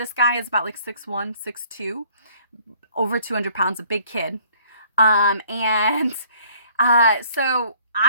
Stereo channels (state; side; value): inverted; both; correlation -0.58